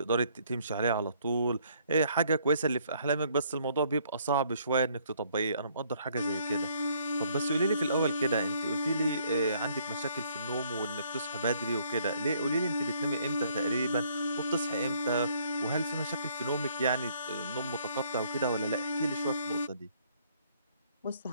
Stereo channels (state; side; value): inverted; both; correlation -0.65